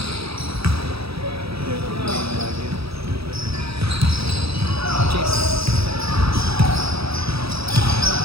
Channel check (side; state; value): left; late; 0.77 ms